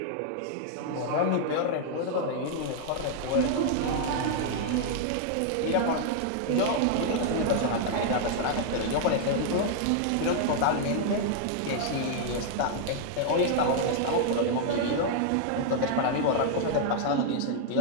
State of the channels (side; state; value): both; different; correlation -0.01